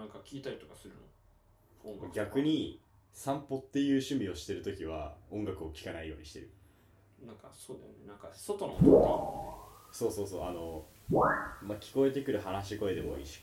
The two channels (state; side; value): identical; both; correlation 1.00